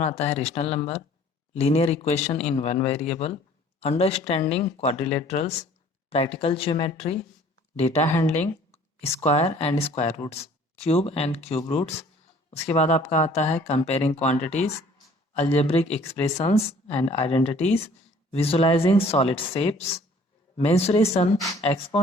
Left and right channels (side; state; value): both; normal; correlation 0.54